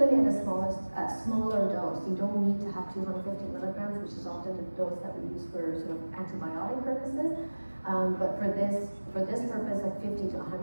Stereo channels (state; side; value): inverted; both; correlation -1.00